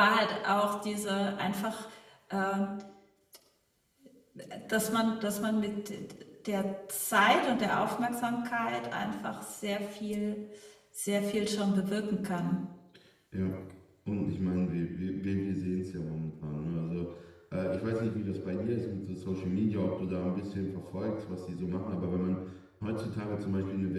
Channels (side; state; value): both; identical; correlation 1.00